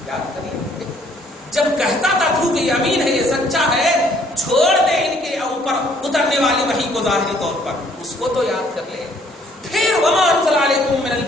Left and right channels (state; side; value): normal; both; correlation 0.62